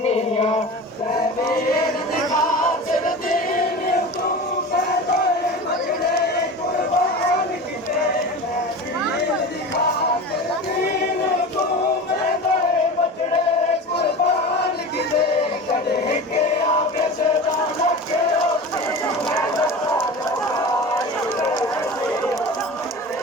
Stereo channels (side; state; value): both; normal; correlation 0.32